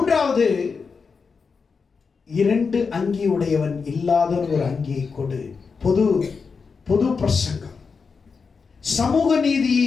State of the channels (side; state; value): right; quieter; 5.2 dB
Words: 2 அங்கி உடையவன் இல்லாத ஒரு அங்கியை கொடு, பொது பிரசங்கம். சமூக